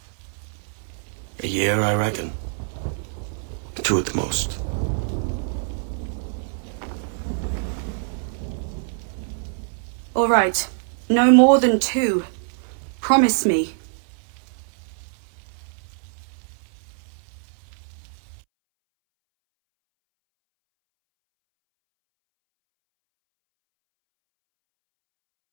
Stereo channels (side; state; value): left; silent; 62 dB below the other